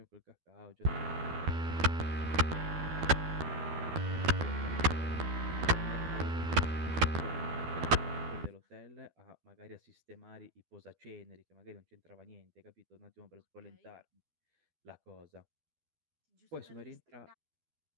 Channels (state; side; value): late; left; 12 ms